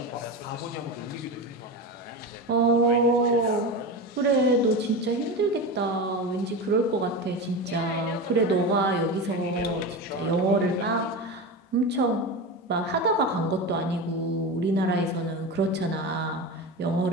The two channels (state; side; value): normal; both; correlation 0.23